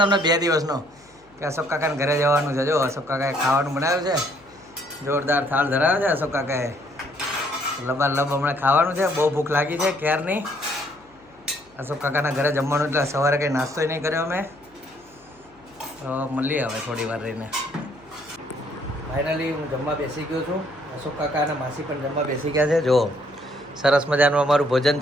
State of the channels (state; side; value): noise; left; hum, 29 dB below the sound